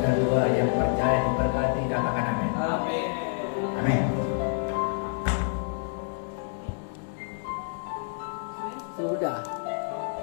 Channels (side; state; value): right; silent; digital silence